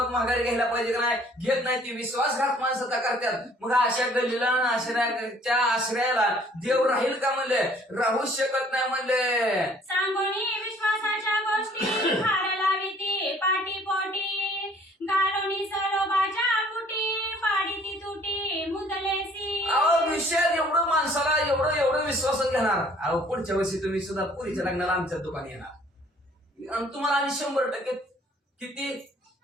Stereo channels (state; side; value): normal; both; correlation 0.57